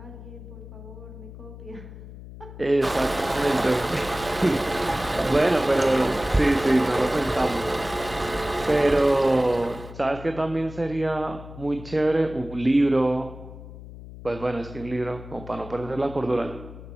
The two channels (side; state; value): left; noise; hum, 15 dB below the sound